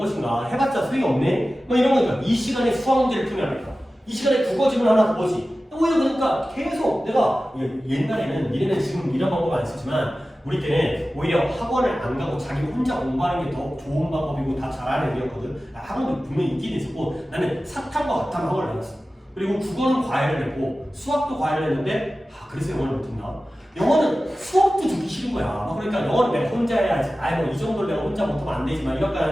해봤자 소용이 없네 뭐 이런 거니까 이 시간에 수학 문제를 풀면 안 될까, 이 시간에 국어 지문 하나 더 보지. 오히려 그러니까 계속 내가 옛날에는 니네는 지금 이런 방법 안 쓰지만 우리 때는 오히려 학원을 안 가고 자기 혼자 공부하는 게 더 좋은 방법이고 다 잘하는 애였거든. 학원도 분명히 있긴 있었고 나는 사탕과 같은 학원을 다녔어. 그리고 국어는 과외를 했고 수학도 과외를 했는데 그래서 영어를 못했나? 영어는 수업도 듣기 싫은 거야. 그러니까 영어는 내가 혼자 해야지. 뭐 이 정도를 내가 혼자 못하면 안 되지만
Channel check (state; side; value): normal; both; correlation 0.95